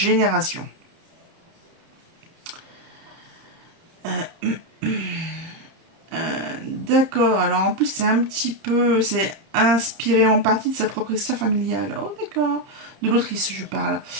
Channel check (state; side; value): late; left; 30 ms